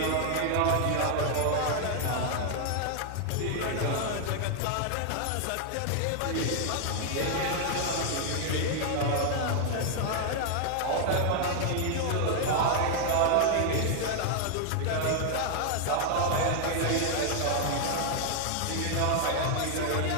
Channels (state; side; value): different; both; correlation 0.00